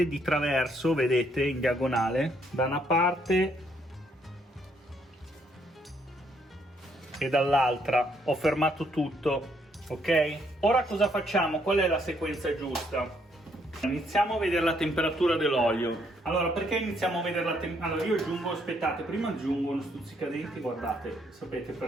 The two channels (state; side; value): normal; both; correlation 0.71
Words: di traverso, vedete, in diagonale, da una parte e dall'altra. Ho fermato tutto, ok? Ora cosa facciamo? Qual è la sequenza giusta? Iniziamo a vedere la temperatura dell'olio. Allora, perché iniziamo a vedere la temperatura? Allora, io aggiungo, aspettate, prima aggiungo uno stuzzicadenti, guardate, sapete